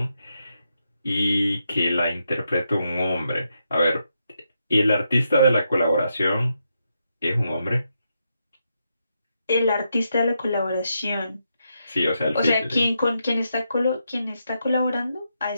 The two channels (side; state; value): both; inverted; correlation -0.82